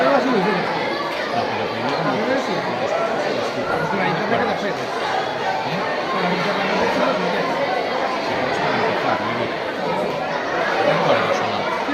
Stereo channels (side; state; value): both; identical; correlation 1.00